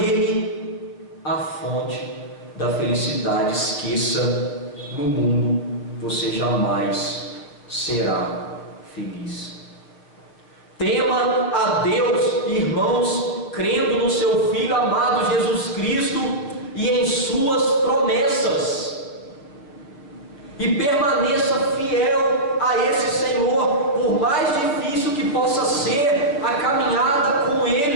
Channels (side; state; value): right; late; 6.8 ms